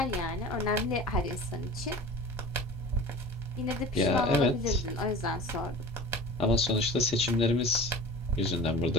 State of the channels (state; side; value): normal; both; correlation 0.38